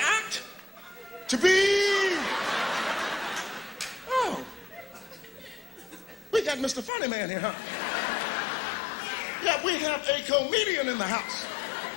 To be... Oh. We got Mr. Funny Man here, huh? Yeah, we have a comedian in the house.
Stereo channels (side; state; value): right; drops out; at 6.9 s